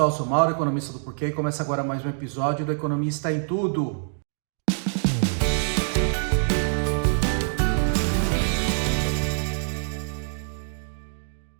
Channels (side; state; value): left; silent; digital silence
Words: sou Mauro, economista do Porquê, e começa agora mais um episódio do Economista em Tudo.